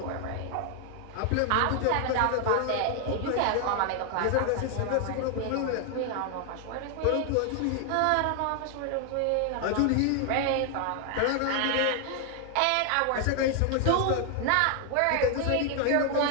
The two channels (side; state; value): both; different; correlation 0.00